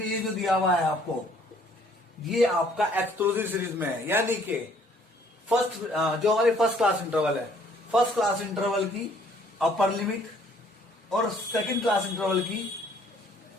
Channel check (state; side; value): normal; both; correlation 0.61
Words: ये जो दिया हुआ है आपको, ये आपका एक्सक्लूसिव सीरीज में है। यानी कि फर्स्ट जो हमारी फर्स्ट क्लास इंटरवल है, फर्स्ट क्लास इंटरवल की अपर लिमिट और सेकंड क्लास इंटरवल की